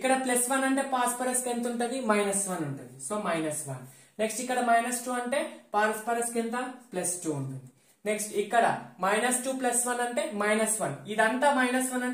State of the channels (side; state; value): both; identical; correlation 1.00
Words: +1 అంటే ఫాస్ఫరస్ కి ఎంత ఉంటుంది, -1 ఉంటుంది. సో -1. నెక్స్ట్ ఇక్కడ -2 అంటే ఫాస్ఫరస్ కి ఎంత, +2 ఉంటుంది. నెక్స్ట్ ఇక్కడ -2 +1 అంటే -1. ఇదంతా -1